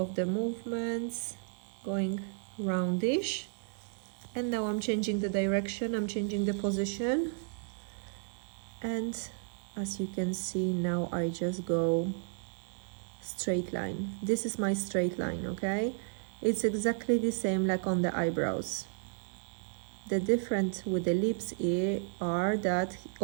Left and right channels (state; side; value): silent; left; 56 dB below the other